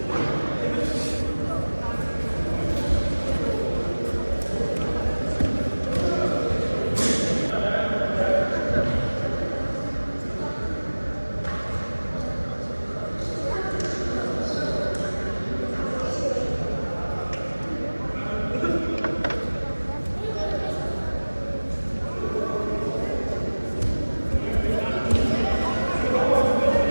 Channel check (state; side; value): inverted; both; correlation -1.00